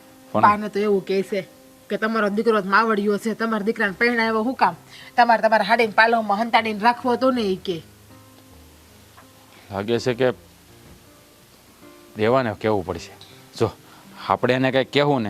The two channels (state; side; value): identical; both; correlation 1.00